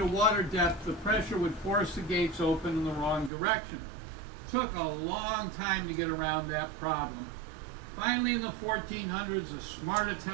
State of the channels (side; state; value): left; drops out; at 3.3 s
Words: of water depth, the pressure would force the gates open in the wrong direction. Took a long time to get around that problem. Finally, in the 1400s, a smart